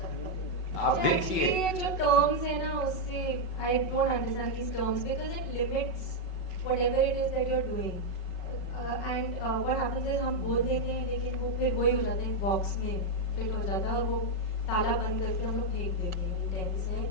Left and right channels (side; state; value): right; late; 5.4 ms